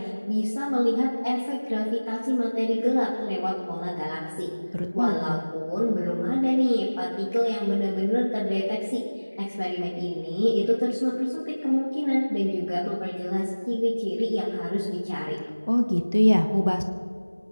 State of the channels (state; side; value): inverted; both; correlation -1.00